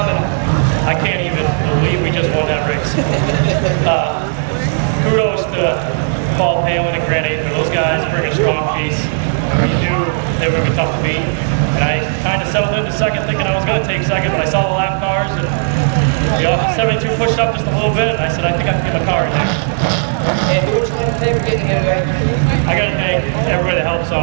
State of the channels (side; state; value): left; silent; digital silence